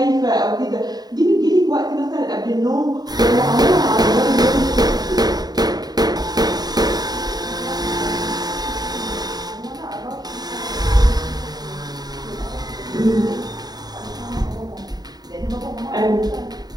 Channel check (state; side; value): late; left; 0.19 ms